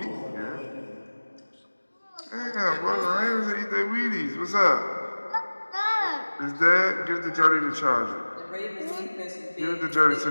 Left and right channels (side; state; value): both; inverted; correlation -1.00